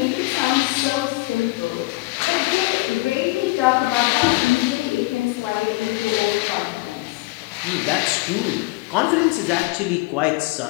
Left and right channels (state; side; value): quieter; right; 22.8 dB